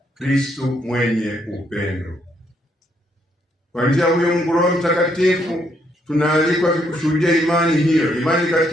Kristo mwenye upendo. Kwa njia huyo Mungu Roho Mtakatifu tunaalikwa kushuhudia imani hiyo, imani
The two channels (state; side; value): normal; both; correlation 0.73